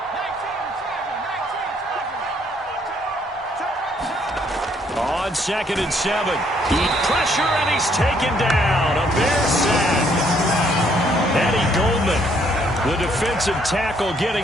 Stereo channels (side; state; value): both; normal; correlation 0.67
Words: On 2nd and 7. Pressure, and he's taken down. A Bear sack. Eddie Goldman, the defensive tackle,